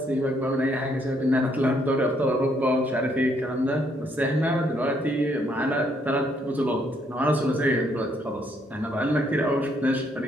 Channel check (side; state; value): both; normal; correlation 0.70